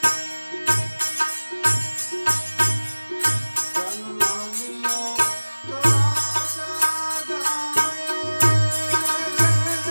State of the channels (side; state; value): both; inverted; correlation -1.00